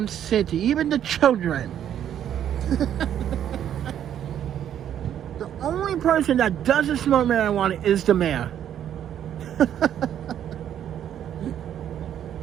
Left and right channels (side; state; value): left; quieter; 10.1 dB